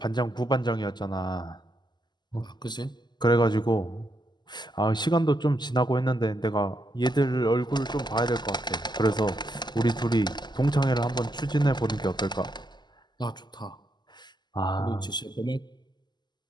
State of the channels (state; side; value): late; right; 0.21 ms